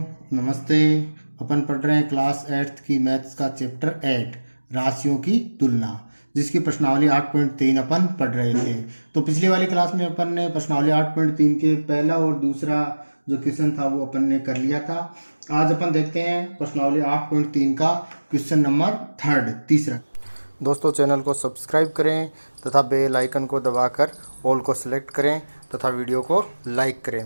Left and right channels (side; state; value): both; inverted; correlation -1.00